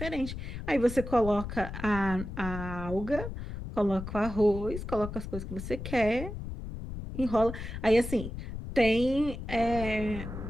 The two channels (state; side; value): noise; left; rumble, 8 dB below the sound